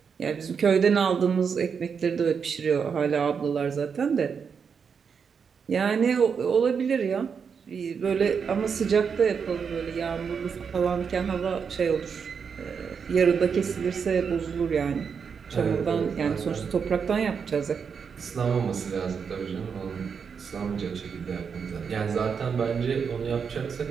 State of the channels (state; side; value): quieter; left; 6.3 dB